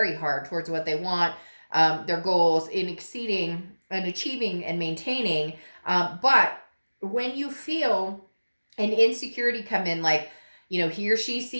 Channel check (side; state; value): both; inverted; correlation -1.00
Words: hard towards what they want, their goals, in exceeding and achieving and maintaining. But when you feel an insecurity come in, like, he or she